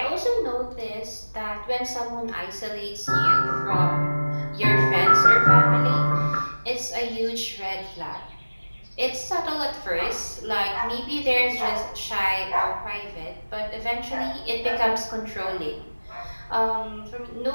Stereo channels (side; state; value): both; inverted; correlation -1.00